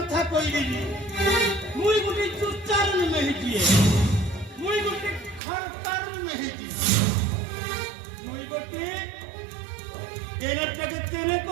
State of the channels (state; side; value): drops out; left; at 5.4 s